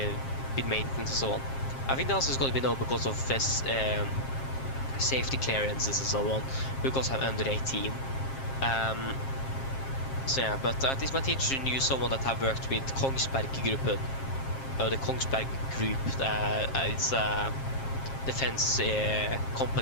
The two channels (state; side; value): late; right; 7.5 ms